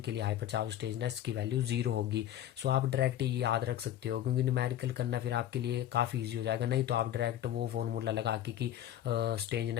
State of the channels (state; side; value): quieter; right; 11.7 dB